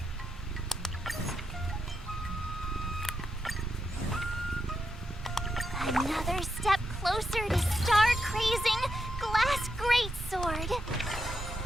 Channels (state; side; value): normal; both; correlation 0.84